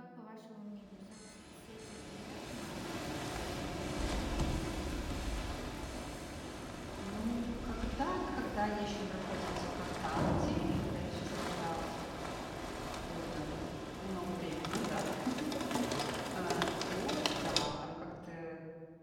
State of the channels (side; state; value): both; identical; correlation 1.00